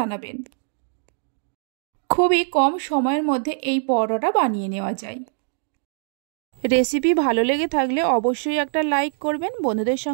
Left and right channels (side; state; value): left; silent; digital silence